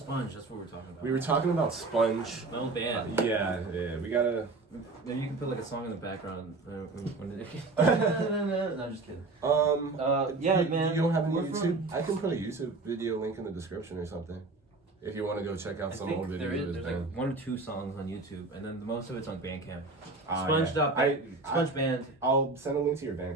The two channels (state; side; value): quieter; left; 3.5 dB